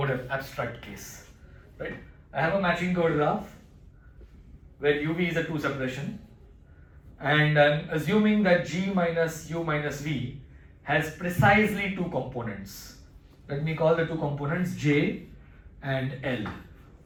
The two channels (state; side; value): identical; both; correlation 1.00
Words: abstract case. Right? I have a matching covered graph where uv is a two separation, and I'm assuming that g minus u minus v has precisely two components. Let me call the two components j and l.